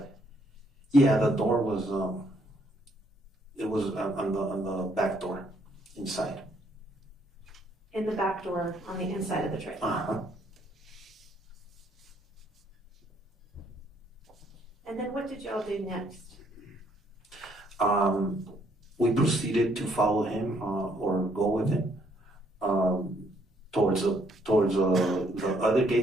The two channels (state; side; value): normal; both; correlation 0.69